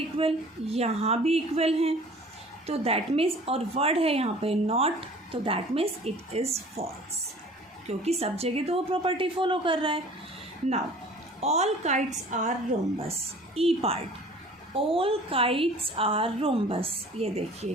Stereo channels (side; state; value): both; normal; correlation 0.47